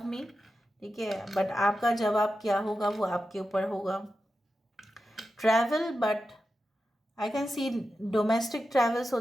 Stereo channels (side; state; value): both; normal; correlation 0.91